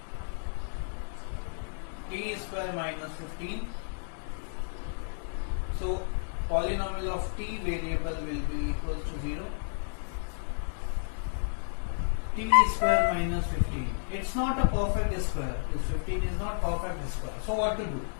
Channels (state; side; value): silent; right; digital silence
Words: t square minus 15. So polynomial of t variable will be equals to 0. T square minus 15. It's not a perfect square. This 15 is not perfect square. So what to do?